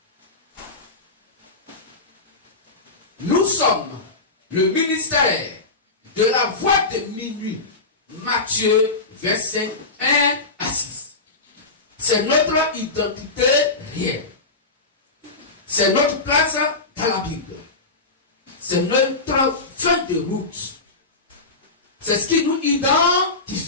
Nous sommes le ministère de la voix de minuit, Matthieu 25, 1 à 6. C'est notre identité réelle. C'est notre place dans la Bible. C'est notre fin de route. C'est ce qui nous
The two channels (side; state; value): right; quieter; 3.5 dB